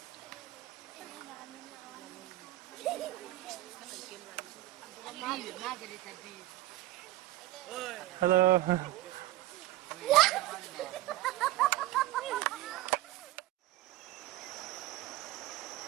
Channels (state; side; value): quieter; left; 16.5 dB